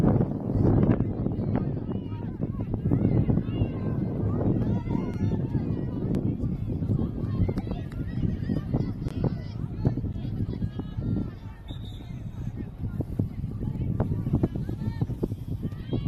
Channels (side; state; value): both; identical; correlation 1.00